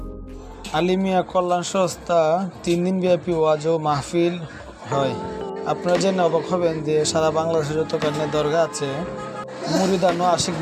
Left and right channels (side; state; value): both; identical; correlation 1.00